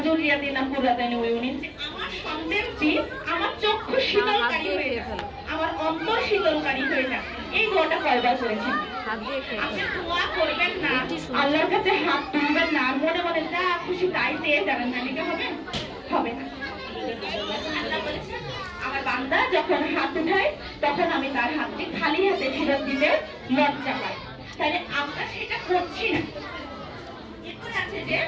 যুররিয়াতিনা কুররাতা আয়ুনিন, যে আমার সন্তানটি আমার চক্ষু শীতলকারী হয়ে যাক, আমার অন্তর শীতলকারী হয়ে যাক। এই দোয়াটা কয়বার করেছেন? আপনি দোয়া করবেন না, আল্লাহর কাছে হাত তুলবেন না, আর মনে মনে যা খুশি তাই চেয়ে যাবেন, না লিখে হবে না। আল্লাহ বলেছেন আমার বান্দা যখন হাত উঠায় তখন আমি তার হাতটি খালি হাতে ফেরত দিতে লজ্জা পাই, তাহলে আমরা সেটা করছি না। এরপরে আছে যে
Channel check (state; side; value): identical; both; correlation 1.00